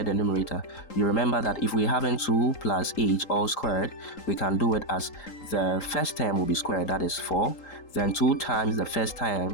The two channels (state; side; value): late; right; 3.8 ms